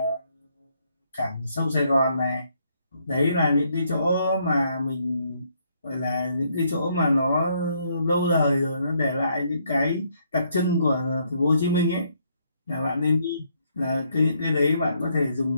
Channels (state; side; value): inverted; both; correlation -0.72